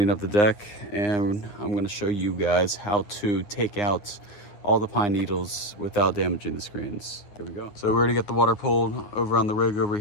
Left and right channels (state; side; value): late; right; 9.4 ms